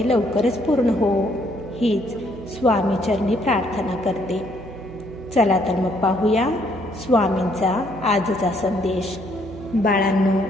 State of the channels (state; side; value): noise; right; hum, 15 dB below the sound